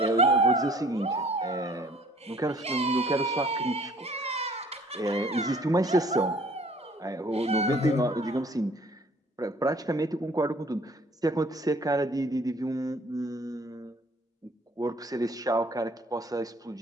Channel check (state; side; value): normal; both; correlation 0.56